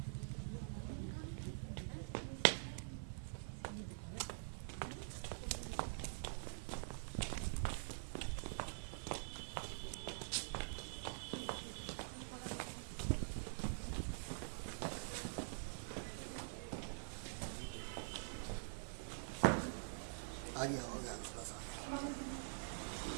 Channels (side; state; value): left; silent; digital silence